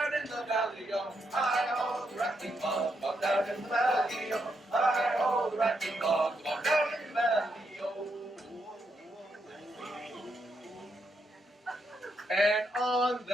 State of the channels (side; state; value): both; normal; correlation 0.80